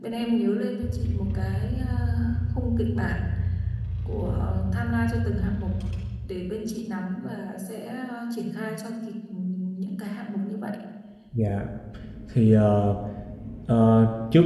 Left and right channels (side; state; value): both; identical; correlation 1.00